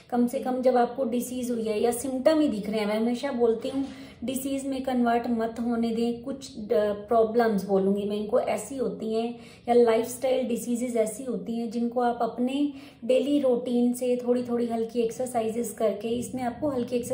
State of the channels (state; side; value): identical; both; correlation 1.00